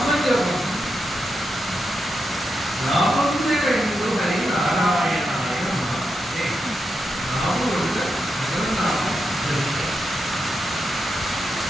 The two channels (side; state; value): both; normal; correlation 0.85